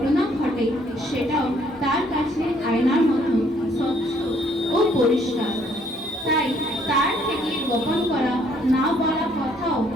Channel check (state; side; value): normal; both; correlation 0.65